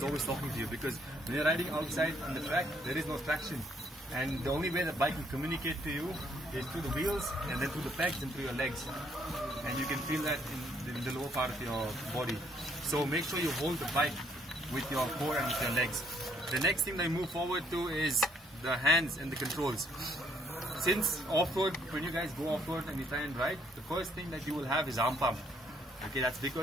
always talking to you, because when you're riding outside on the track, there is no traction. And the only way the bike can communicate to you is through the wheels and then through the pegs and through your legs. And you can feel that in the lower part of your body. So make sure you hold the bike with your core and with your legs. The next thing that I move forward to is the hands and the controls. Since off-road, when you guys go off-road and you try and ride, the first thing that you will have is arm pump. Okay, that's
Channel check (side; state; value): both; normal; correlation 0.67